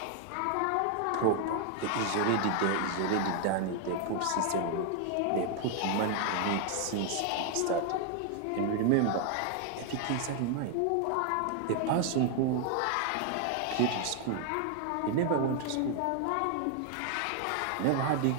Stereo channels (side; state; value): both; different; correlation 0.00